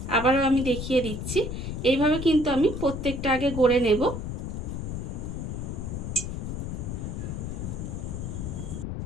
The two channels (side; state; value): left; noise; rumble, 5 dB below the sound